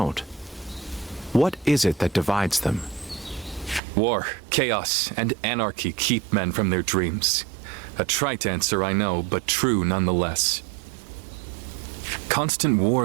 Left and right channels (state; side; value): drops out; left; at 3.8 s